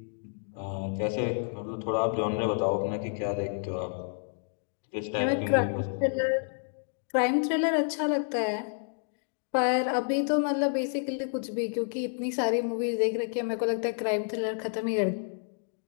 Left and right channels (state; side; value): silent; right; digital silence